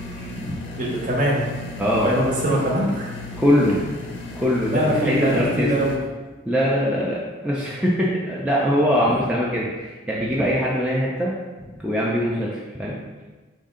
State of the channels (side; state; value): both; normal; correlation 0.55